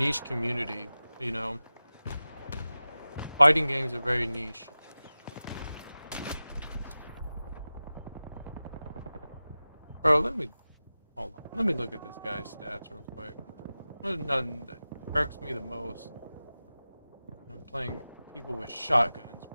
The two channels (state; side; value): inverted; both; correlation -0.96